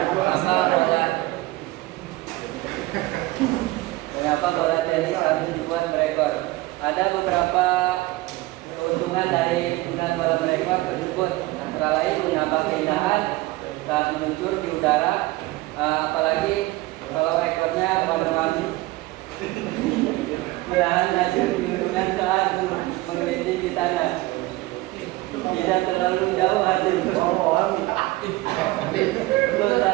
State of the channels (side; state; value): left; quieter; 19.4 dB